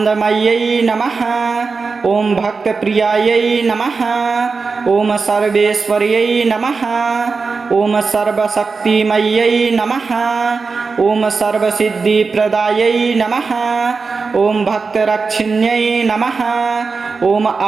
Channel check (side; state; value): left; quieter; 4.6 dB